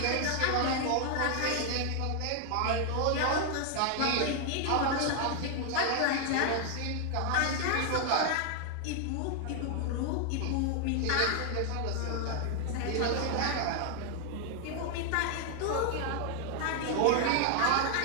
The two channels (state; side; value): different; both; correlation 0.00